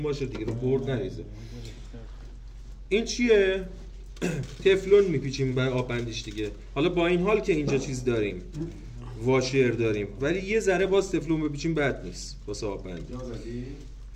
باشه دیگه رو برد نریزه. این چیه؟ تفلون میپیچیم برای آب بندیش دیگه. حالا با این حال که اینجا چیز داریم واشر داریم ولی یه ذره باز تفلون بپیچیم بد نیست واسه آب بندی.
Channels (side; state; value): both; identical; correlation 1.00